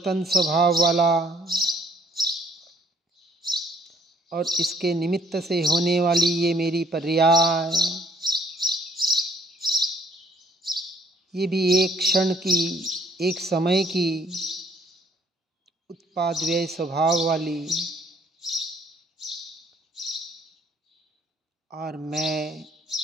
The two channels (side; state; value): both; normal; correlation 0.62